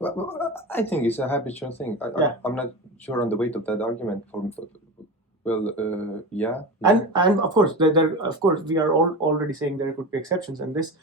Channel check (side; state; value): both; normal; correlation 0.26